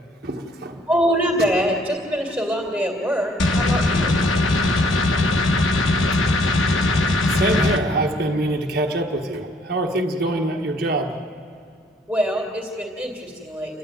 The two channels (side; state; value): both; normal; correlation 0.63